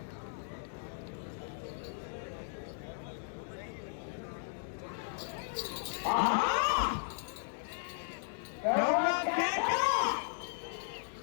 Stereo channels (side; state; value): right; silent; digital silence